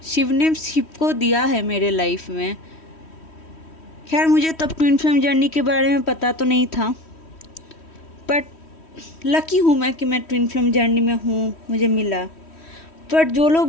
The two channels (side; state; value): right; late; 3.1 ms